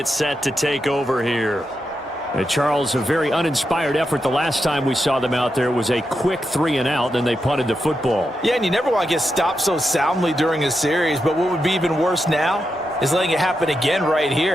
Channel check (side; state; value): both; normal; correlation 0.86